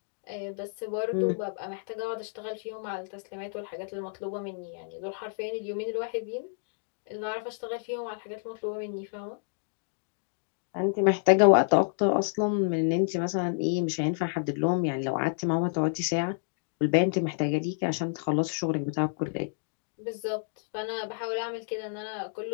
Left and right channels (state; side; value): silent; right; digital silence